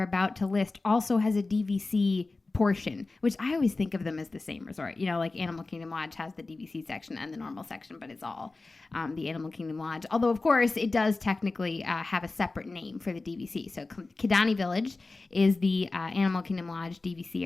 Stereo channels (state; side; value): quieter; right; 3.5 dB